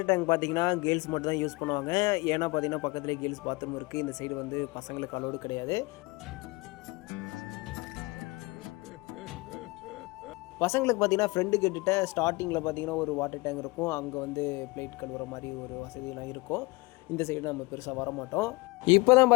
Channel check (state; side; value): quieter; right; 24.3 dB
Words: டேங்க் பார்த்தீங்கன்னா கேர்ள்ஸ் மட்டும் தான் யூஸ் பண்ணுவாங்க. ஏன்னா பார்த்தீங்கன்னா பக்கத்துலேயே கேர்ள்ஸ் பாத்ரூம் இருக்குது. இந்த சைடு வந்து பசங்களுக்கு அலோடு கிடையாது. பசங்களுக்கு பார்த்தீங்கன்னா ஃப்ரெண்டு கிட்ட ஸ்டார்டிங்கில் பார்த்தீங்கன்னா ஒரு வாட்டர் டேங்க் இருக்கும். அங்கே வந்து பிளேட் கழுவுற மாதிரி ஒரு வசதியெலாம் இருக்கும். இந்த சைடு நம்ம பெருசாக வரமாட்டோம். இப்போ தான்